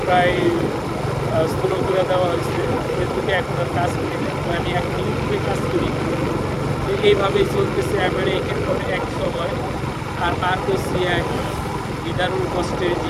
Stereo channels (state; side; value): identical; both; correlation 1.00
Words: প্রায় স্লো করে দেওয়া হয়েছে, ফেসবুকে এখন আর কাজ করি না। তো আমি এখন ইউটিউবে কাজ করি। তো এইভাবেই চলতেছে আমার একের পরে এক সময়। আর পার করছি এক নিদারুণ কষ্টের